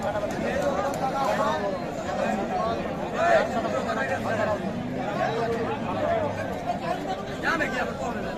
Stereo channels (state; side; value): identical; both; correlation 1.00